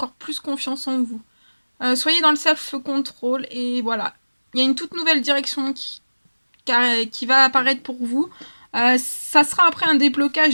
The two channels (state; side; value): inverted; both; correlation -1.00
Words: plus confiance en vous. Soyez dans le self-control et voilà. Il y a une toute nouvelle direction qui va apparaître pour vous. Ça sera après un